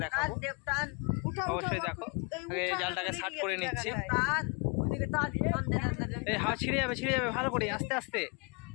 দেখাবো। অবশ্যই দেখো, আগে জালটাকে শার্ট করে নিচ্ছি। এই হাওয়া ছিঁড়ে যাবে ভালো করে, আস্তে আস্তে।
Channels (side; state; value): right; quieter; 31.9 dB